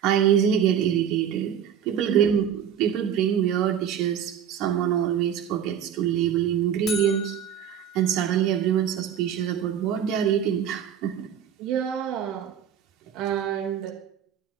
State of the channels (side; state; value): left; quieter; 9.1 dB